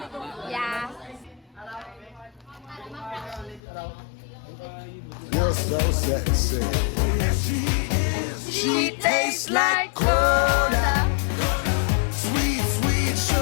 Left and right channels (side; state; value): right; drops out; at 3.6 s